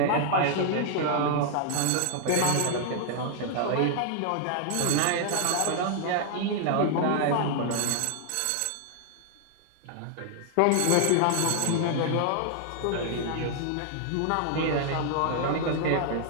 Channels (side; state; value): both; different; correlation 0.00